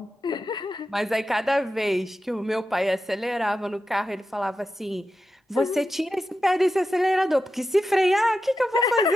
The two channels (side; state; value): both; normal; correlation 0.90